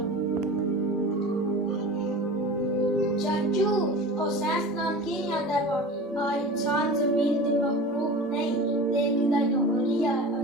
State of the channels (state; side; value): normal; both; correlation 0.35